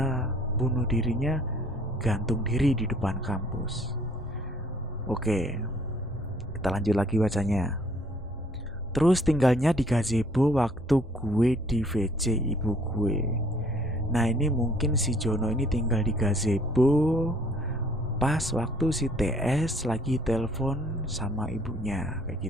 bunuh dirinya gantung diri di depan kampus. Oke, kita lanjut lagi bacanya. Terus tinggalnya di gazebo waktu gue di VC ibu gue. Nah ini mungkin si Jono ini tinggal di gazebo pas waktu si TS lagi telepon sama ibunya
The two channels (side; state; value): both; normal; correlation 0.60